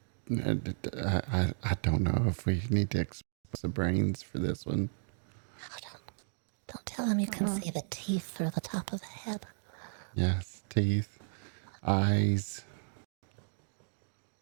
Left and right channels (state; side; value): silent; left; digital silence